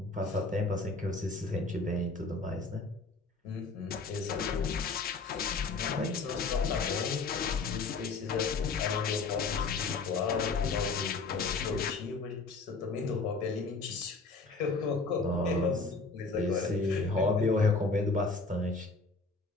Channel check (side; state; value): right; quieter; 3.9 dB